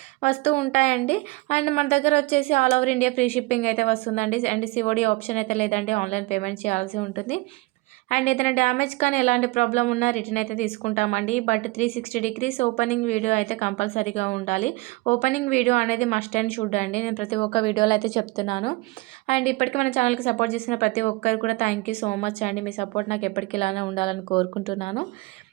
వస్తూ ఉంటాయండి. అండ్ మన దగ్గర వచ్చేసి all over India free shipping అయితే వస్తుందండి. అండ్ సిఓడి ఆప్షన్ అయితే లేదండి, ఆన్లైన్ పేమెంట్ చేయాల్సి ఉంటుంది. అండ్ ఏదైనా డ్యామేజ్ కానీ ఎలాంటి ప్రాబ్లం ఉన్నా రిటర్న్ అయితే తీసుకుంటామండి. బట్ 360 డిగ్రీస్ ఓపెనింగ్ వీడియో అయితే కంపల్సరీగా ఉండాలి. ఓపెనింగ్ వీడియో అనేది మస్ట్ అండ్ షుడ్ అండి. నేను ప్రతి ఒక్క వీడియోలో అయితే చెప్తున్నాను. అండ్ ఇప్పటికీ మన ఛానల్కి సపోర్ట్ చేసిన ప్రతి ఒక్కరు కూడా థ్యాంక్ యూ సో మచ్ అండి. మీ సపోర్ట్ నాకు ఎప్పటికీ ఇలానే ఉండాలని కోరుకుంటున్నాను.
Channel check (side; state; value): left; quieter; 23.8 dB